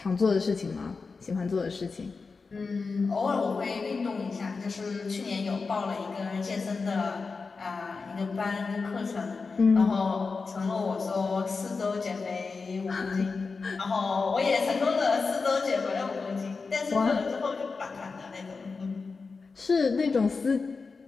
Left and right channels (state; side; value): quieter; right; 4.5 dB